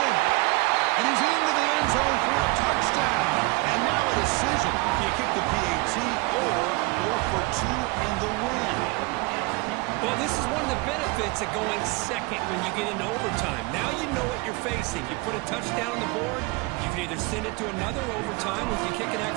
And he's into the end zone for a touchdown. And now a decision. Do you kick the PAT or go for 2 in the win? Well, this is one of the benefits of going second when you get into overtime. Now you know what you're facing. You put a touchdown on the board, you can either send it to another overtime if you kick an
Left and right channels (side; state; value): left; quieter; 25.7 dB